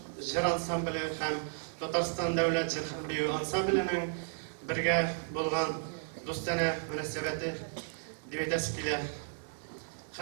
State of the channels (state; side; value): silent; left; digital silence